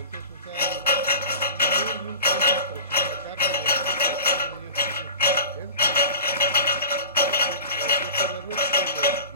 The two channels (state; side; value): inverted; both; correlation -0.37